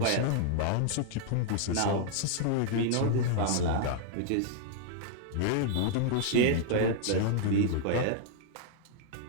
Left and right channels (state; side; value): different; both; correlation -0.01